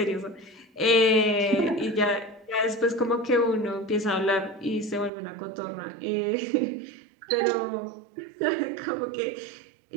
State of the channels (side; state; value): left; drops out; at 5.1 s